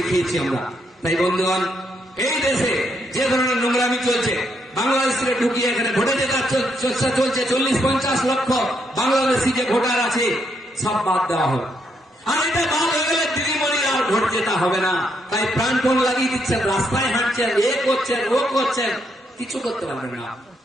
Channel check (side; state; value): both; normal; correlation 0.76